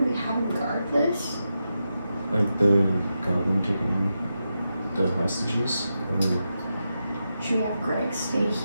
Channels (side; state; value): both; inverted; correlation -0.88